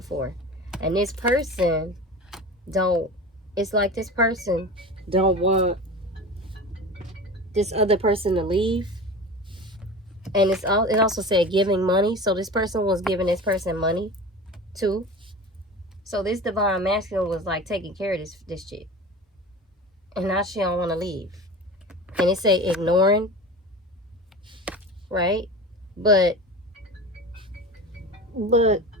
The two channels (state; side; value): normal; both; correlation 0.33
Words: And this person it's like this person don't want this other person to leave. And it also said giving money. So this person was giving this person money too. So this divine masculine was like taking care of this chick. And now she don't want to leave. And it say ignoring, right? But the